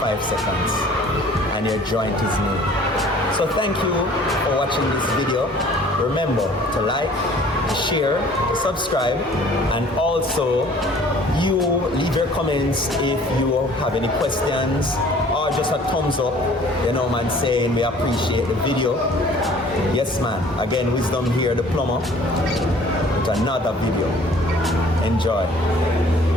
seconds and your joint is made. So thank you for watching this video. Remember to like, share, subscribe, and also you leave your comments if you have any questions or just a thumbs up, you know man, saying we appreciate the video. Yes man, again, Wisdom here, the plumber, with another video. Enjoy.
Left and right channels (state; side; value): normal; both; correlation 0.52